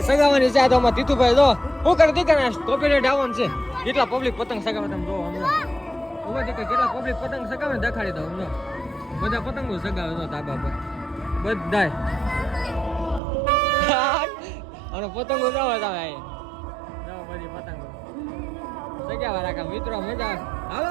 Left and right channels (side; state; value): left; drops out; at 13.2 s